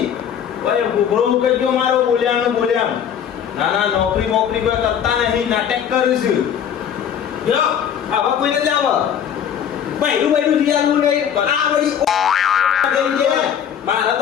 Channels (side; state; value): right; quieter; 8.6 dB